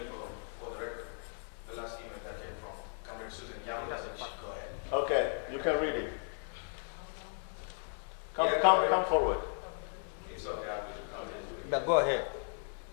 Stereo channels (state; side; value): silent; right; 54 dB below the other